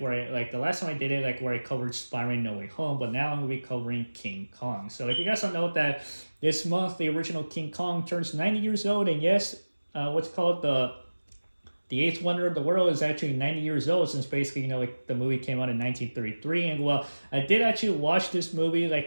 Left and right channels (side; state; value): both; inverted; correlation -1.00